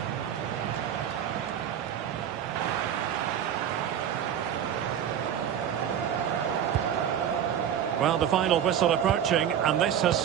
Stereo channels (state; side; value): quieter; left; 9.4 dB